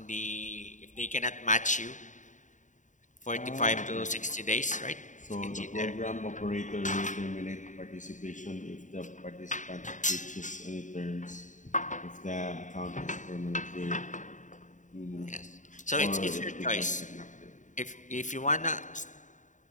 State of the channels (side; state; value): right; late; 0.36 ms